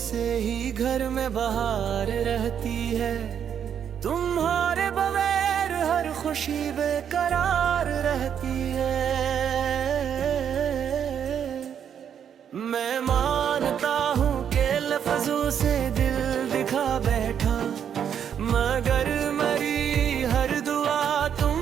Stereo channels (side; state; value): left; quieter; 8.5 dB